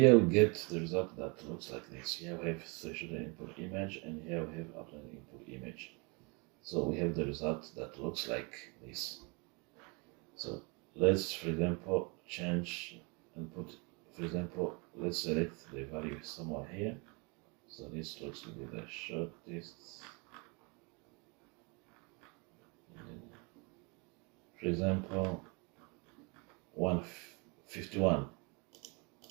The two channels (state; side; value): quieter; left; 30.8 dB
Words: we get the result that looks like this. Here we have threshold input image, and here we have outline input image. So we have the result that looks like this. So let's, for example, change and put, for example, let's select the value somewhere here. So this looks to be the shortest. For example, 151.